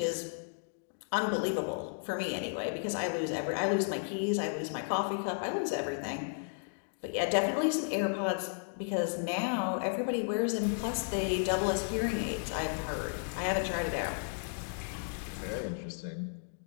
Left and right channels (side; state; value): right; silent; digital silence